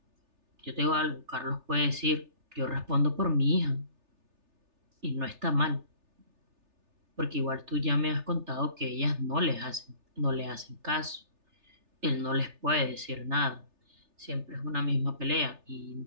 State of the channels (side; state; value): left; late; 3.3 ms